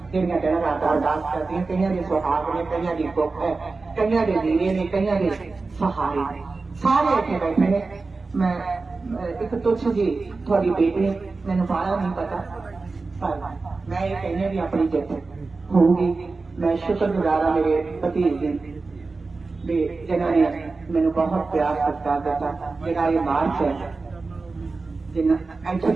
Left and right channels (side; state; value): left; quieter; 3.9 dB